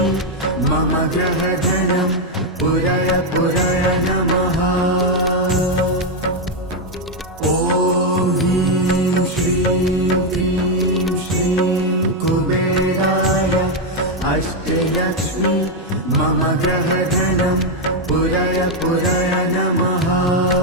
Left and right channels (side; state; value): both; normal; correlation 0.03